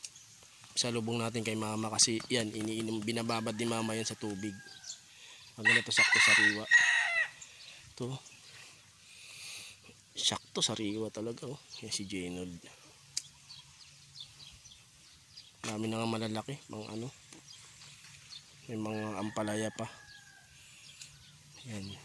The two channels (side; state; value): both; identical; correlation 1.00